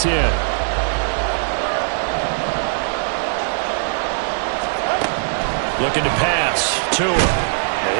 Looking to pass. Tua.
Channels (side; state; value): left; silent; digital silence